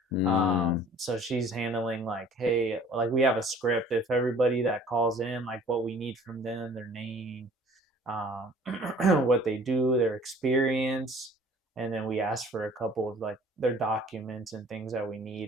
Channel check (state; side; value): normal; both; correlation 0.50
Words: Mm, So she's handling like, hey, like we have a script. If everybody that calls in, like what we need from them, their name, um, what they do, their experience, and then we ask for a couple of like their documents and things that we